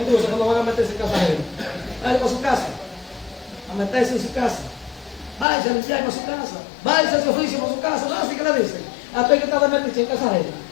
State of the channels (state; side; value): drops out; right; at 5.5 s